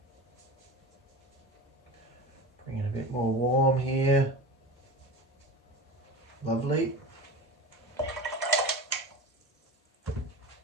Bring in a bit more warm here. Lovely.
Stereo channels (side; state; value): both; normal; correlation 0.30